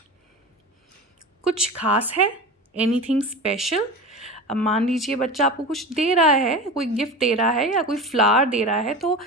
कुछ खास है, एनीथिंग स्पेशल। अब मान लीजिए बच्चा आपको कुछ दे रहा है, कोई गिफ्ट दे रहा है या कोई फ्लावर दे रहा है, तो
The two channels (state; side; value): normal; both; correlation 0.29